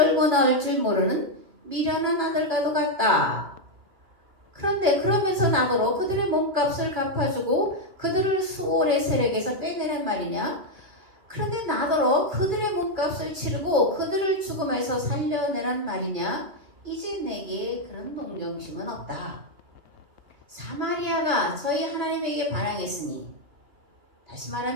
나올 줄 모르는 미련한 아들과도 같다. 그런데 그러면서 나더러 그들의 몸값을 갚아주고 그들을 수월의 세력에서 빼내란 말이냐? 그런데 나더러 그들의 몸값을 치르고 그들을 죽음에서 살려내란 말이냐? 이제 내게 그런 동정심은 없다. 사마리아가 저희 하나님에게 반항했으니, 다시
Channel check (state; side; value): late; left; 2.6 ms